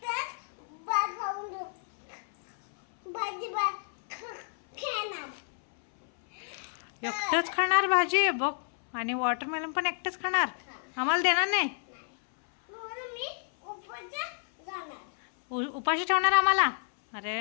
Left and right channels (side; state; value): right; silent; 58 dB below the other